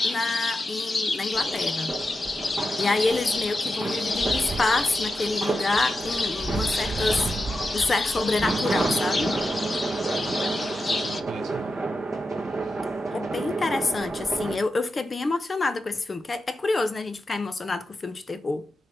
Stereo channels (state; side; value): normal; both; correlation 0.89